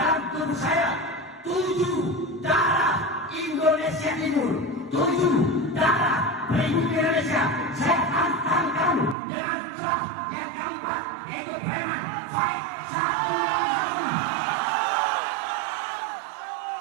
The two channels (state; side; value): drops out; left; at 9.2 s